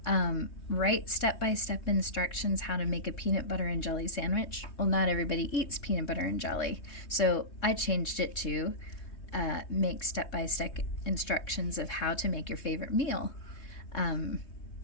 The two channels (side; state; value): right; late; 3.7 ms